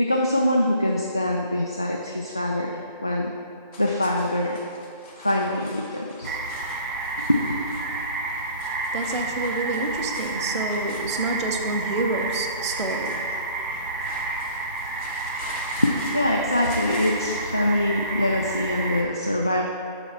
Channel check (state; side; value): inverted; both; correlation -0.55